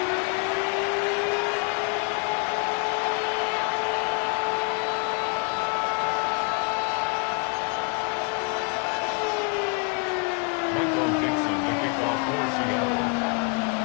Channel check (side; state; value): right; quieter; 36.1 dB